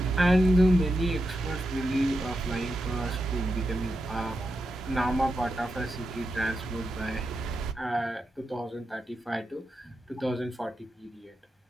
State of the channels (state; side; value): normal; both; correlation 0.87